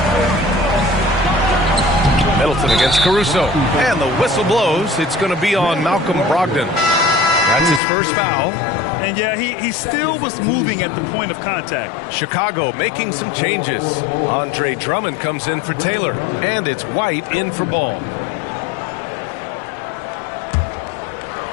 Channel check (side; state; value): right; drops out; at 7.8 s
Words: Middleton against Caruso. And the whistle blows. It's going to be on Malcolm Brogdon. That's his first foul. And, yeah, he still was moving at the point of contact. Chicago making some changes. Andre Drummond comes in for Taylor. And it's White in for Ball.